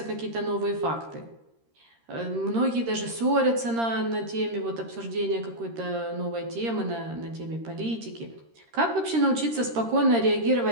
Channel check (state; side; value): late; left; 13 ms